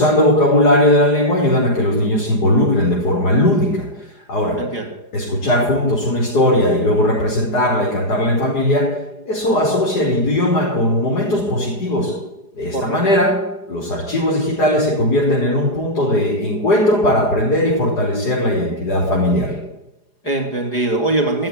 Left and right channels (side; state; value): right; late; 4.9 ms